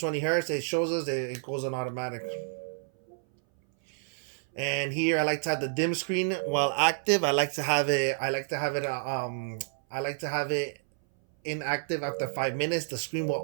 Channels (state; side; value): silent; left; 58 dB below the other